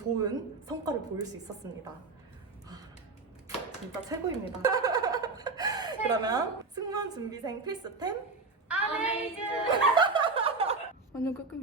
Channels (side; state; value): left; quieter; 3.9 dB